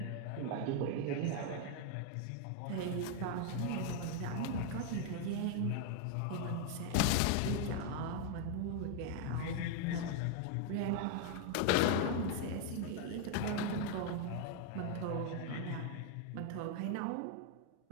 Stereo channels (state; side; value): different; both; correlation 0.00